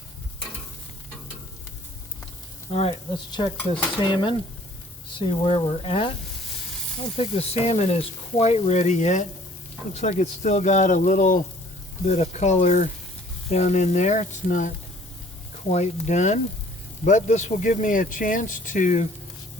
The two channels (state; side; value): normal; both; correlation 0.55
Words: All right, let's check this salmon, see where we're at. I don't think the salmon is quite ready yet. Looks like it's still got a little bit of color down in there. It's not quite done, but this will give me a chance to